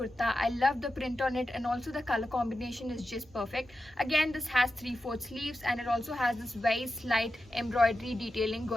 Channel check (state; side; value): normal; both; correlation 0.91